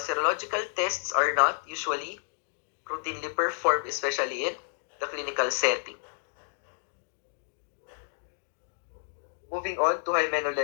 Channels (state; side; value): silent; right; digital silence